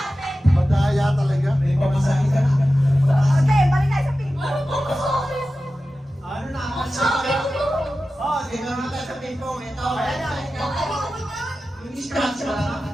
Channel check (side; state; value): both; normal; correlation 0.94